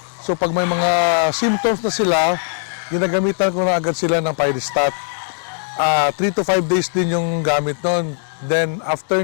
So pag may mga symptoms na sila, ginagamitan ko na agad sila ng Pyristat. 3 to 5 days din yung gamit nun. Then after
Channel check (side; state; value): right; silent; digital silence